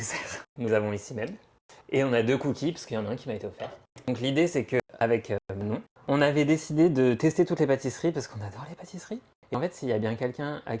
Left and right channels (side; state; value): both; identical; correlation 1.00